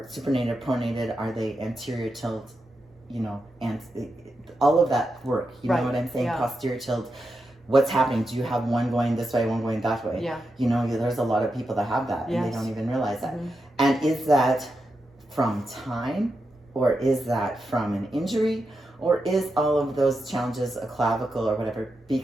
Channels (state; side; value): normal; both; correlation 0.87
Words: supinated, pronated? Are they anterior tilt? You know, and all of that work. You know what I'm saying? Posterior tilt. What's happening? Do you have one going this way, one going that way? Yeah. You know, there's a lot of people that have that, and they don't even realize that. And is that from time, or is that from an injury, or is all of those challenges a clavicle or whatever